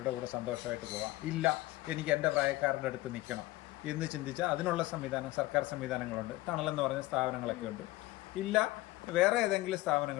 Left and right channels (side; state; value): right; quieter; 18.4 dB